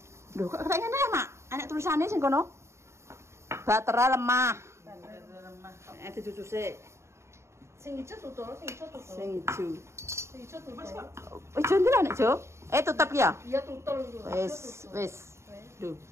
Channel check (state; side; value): late; left; 0.13 ms